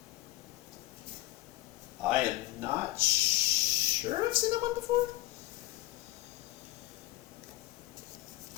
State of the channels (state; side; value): quieter; right; 17.6 dB